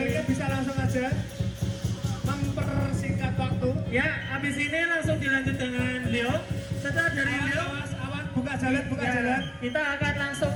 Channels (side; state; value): both; identical; correlation 1.00